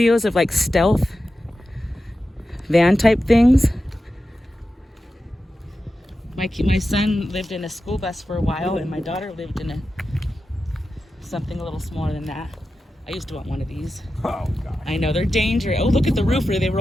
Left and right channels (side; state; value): both; normal; correlation 0.92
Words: of like stealth van type things. My son lived in a school bus for a while, and my daughter lived in something a little smaller than that. I used to want one of these. Oh, God. I know, they're dangerous. Oh, look at the roof where they